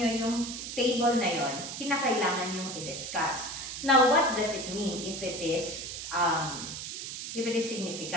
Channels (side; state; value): right; noise; hiss, 7 dB below the sound